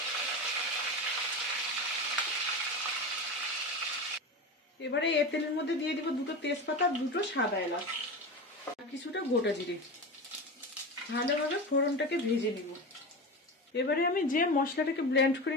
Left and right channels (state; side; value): normal; both; correlation 0.25